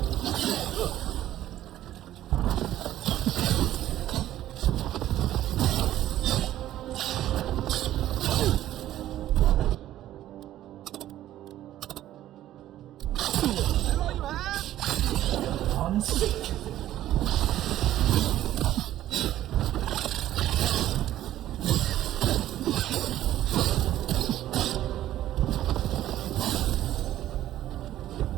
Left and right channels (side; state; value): left; quieter; 13.3 dB